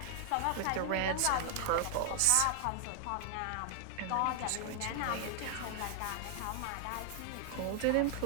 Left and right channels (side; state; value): both; different; correlation 0.00